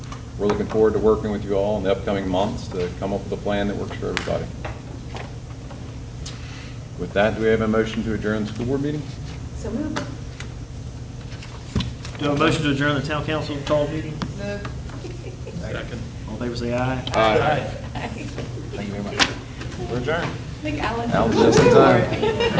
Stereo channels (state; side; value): identical; both; correlation 1.00